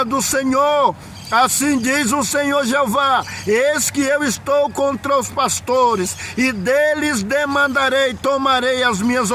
do Senhor. Assim diz o Senhor Jeová: eis que eu estou contra os pastores, e deles demandarei, tomarei as minhas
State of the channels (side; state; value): both; identical; correlation 1.00